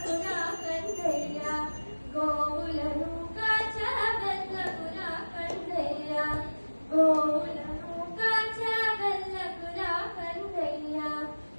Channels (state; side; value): inverted; both; correlation -1.00